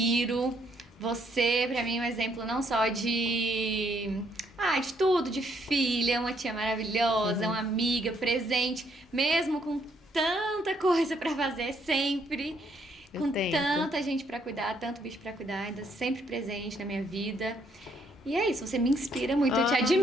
Você, pra mim, é um exemplo não só de tudo, de filha, uma tia maravilhosa, uma amiga, presente, mesmo com tanta coisa pra fazer sempre, Eu com tento. tanta gente pra cuidar, tanto bicho pra cuidar, ainda sempre presente na minha vida. E é isso, você me inspira muito, eu te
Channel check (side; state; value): both; normal; correlation 0.71